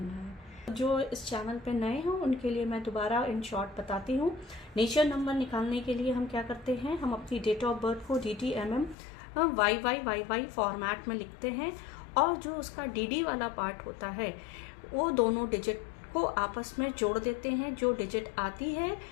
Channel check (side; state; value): right; drops out; at 9.0 s